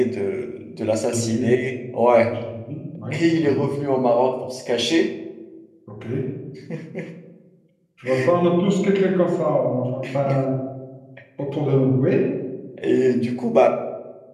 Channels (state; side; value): identical; both; correlation 1.00